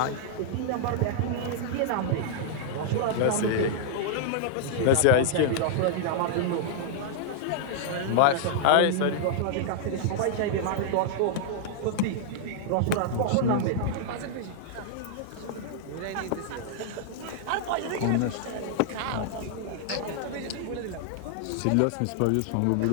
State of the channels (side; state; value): both; different; correlation -0.01